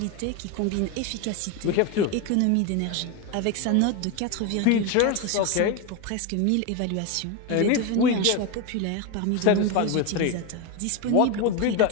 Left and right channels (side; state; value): both; different; correlation 0.02